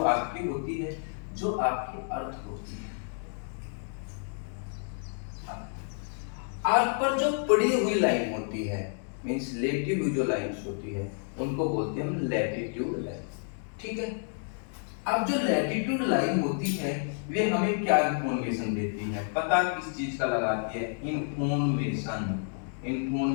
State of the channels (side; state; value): right; silent; 58 dB below the other